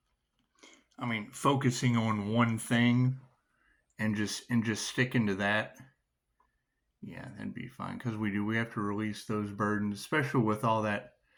I mean, focusing on one thing and just sticking to that, yeah, that'd be fine. Because we have to release those burdens, especially with all that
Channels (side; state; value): both; identical; correlation 1.00